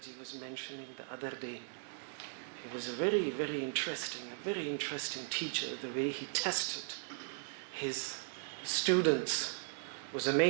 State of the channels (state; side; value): silent; left; 53 dB below the other